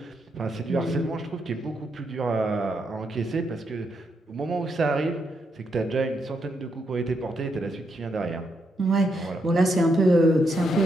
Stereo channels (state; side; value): normal; both; correlation 0.80